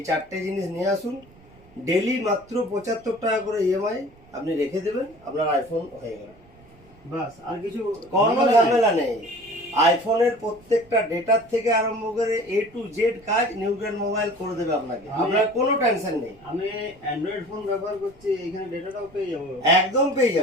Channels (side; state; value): right; noise; rumble, 26 dB below the sound